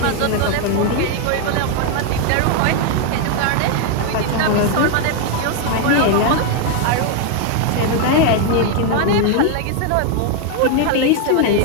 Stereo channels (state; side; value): different; both; correlation 0.01